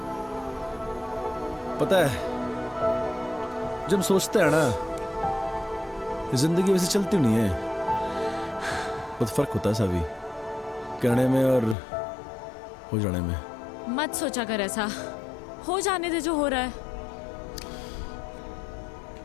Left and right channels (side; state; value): right; drops out; at 11.8 s